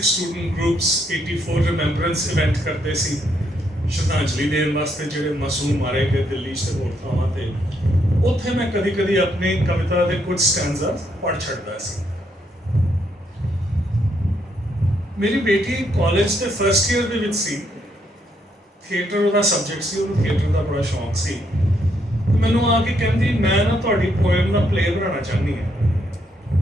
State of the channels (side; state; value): both; normal; correlation 0.75